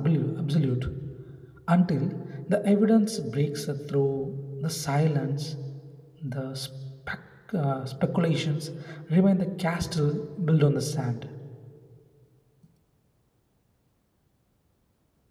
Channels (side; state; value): both; identical; correlation 1.00